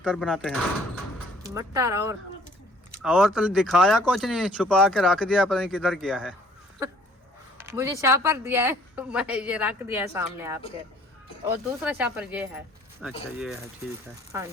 बनाते हैं। मटर और तो दिखाया कुछ नहीं, छुपा के रख दिया, पता नहीं किधर गया है। मुझे शापर दिया है, मैं ये रख दिया है सामने आपके, और दूसरा शापर ये है। अच्छा ये है, ठीक है। हाँ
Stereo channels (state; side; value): normal; both; correlation 0.57